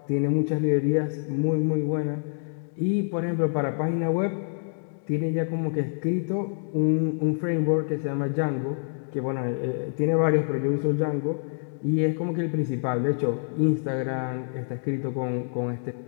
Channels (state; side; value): silent; right; digital silence